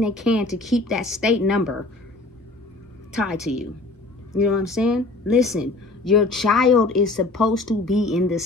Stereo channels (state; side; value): quieter; right; 3.1 dB